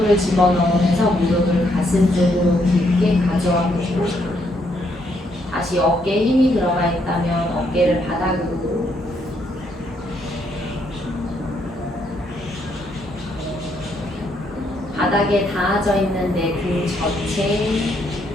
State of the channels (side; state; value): both; normal; correlation 0.73